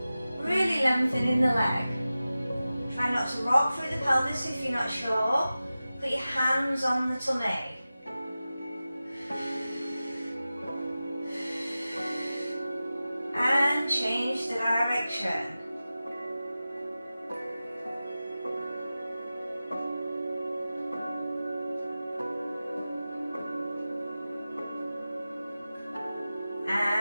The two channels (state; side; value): inverted; both; correlation -0.95